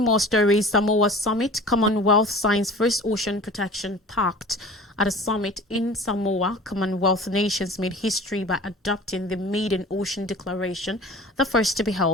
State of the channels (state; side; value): normal; both; correlation 0.41